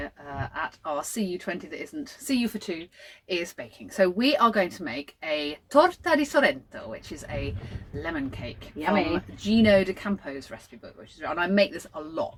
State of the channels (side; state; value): both; identical; correlation 1.00